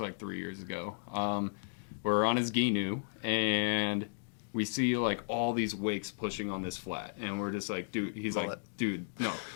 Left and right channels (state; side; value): silent; right; digital silence